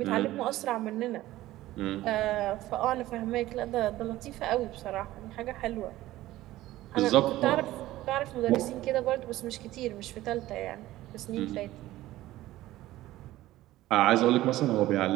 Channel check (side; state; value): left; quieter; 15.9 dB